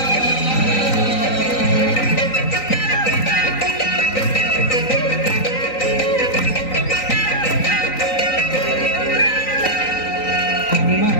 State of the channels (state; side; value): late; right; 3.9 ms